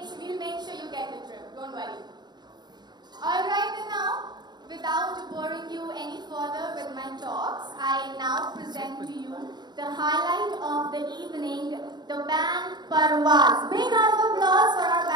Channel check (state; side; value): late; left; 0.21 ms